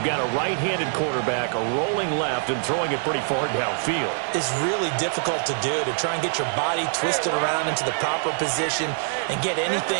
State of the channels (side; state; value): left; silent; 62 dB below the other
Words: got a right-handed quarterback, a rolling left, and throwing it pretty far downfield. It's really difficult to do, to try and get your body twisted around into the proper position and get